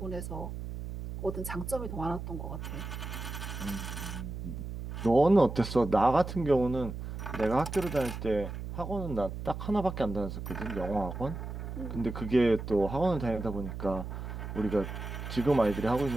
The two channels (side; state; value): right; noise; hum, 7 dB below the sound